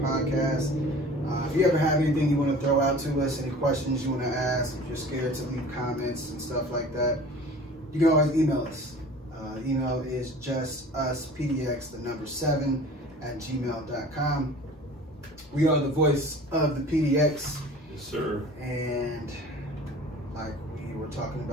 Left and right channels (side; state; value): both; normal; correlation 0.43